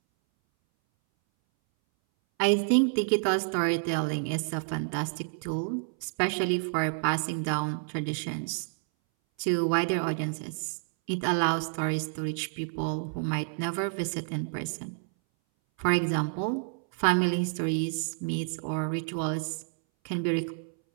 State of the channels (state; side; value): silent; left; 58 dB below the other